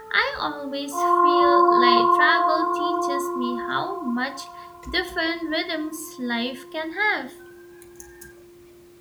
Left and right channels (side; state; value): both; identical; correlation 1.00